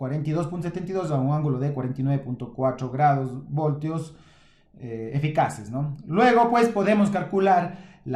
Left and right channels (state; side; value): identical; both; correlation 1.00